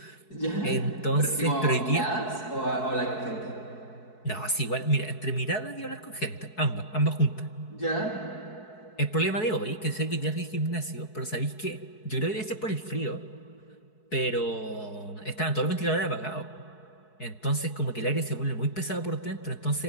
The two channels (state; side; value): late; right; 4.7 ms